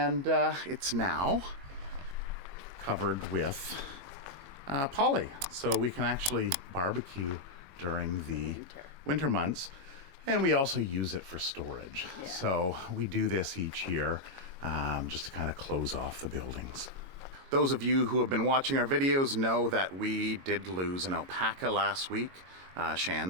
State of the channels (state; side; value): late; left; 22 ms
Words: it's now covered with poly, so we can actually barbecue during the winter months. And we also use it for storage. Yeah. So we do this each year just to kind of close off the buildings. Those of you who have been watching our videos know that we did lose an alpaca last week,